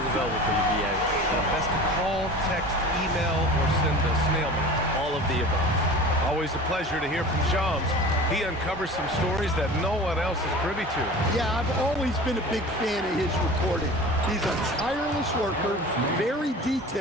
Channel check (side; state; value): both; normal; correlation 0.38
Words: available for you, B.A. Best to call, text, email, or send a snail mail. All of the above. Always a pleasure to hear from Shams. He uncovers some stories that no one else is privy to. Yeah, I've always been a big fan of his reporting. He's a tireless worker, very